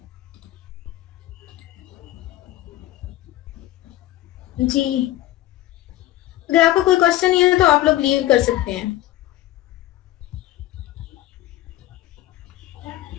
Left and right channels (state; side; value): quieter; right; 15.2 dB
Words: जी अगर आपको कोई क्वेश्चन नहीं है तो आप लोग लीव कर सकते हैं।